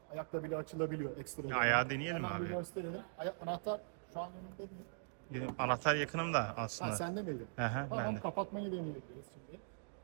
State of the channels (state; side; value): silent; left; digital silence